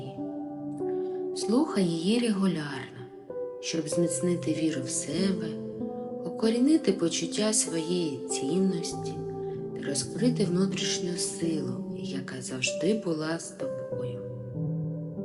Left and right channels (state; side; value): identical; both; correlation 1.00